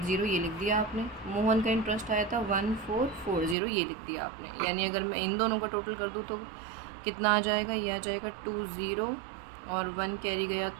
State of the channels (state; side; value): drops out; left; at 3.6 s